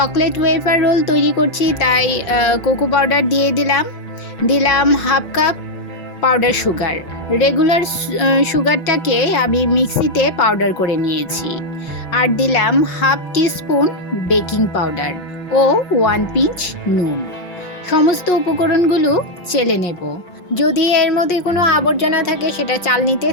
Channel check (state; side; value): late; right; 6.2 ms